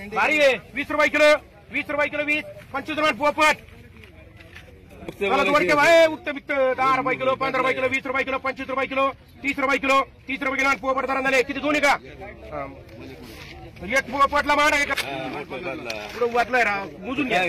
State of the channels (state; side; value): identical; both; correlation 1.00